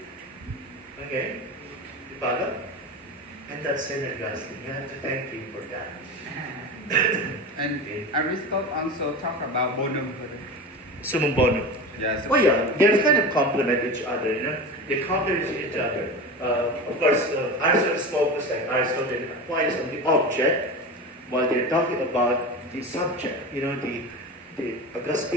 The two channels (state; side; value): normal; both; correlation 0.27